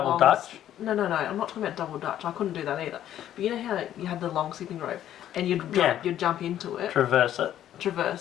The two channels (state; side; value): quieter; right; 11.5 dB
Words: long... Dutch? No, I'm not talking about double Dutch. I couldn't do that either. But you know how you had the long skipping rope, and you'd jump into it, Traverse it.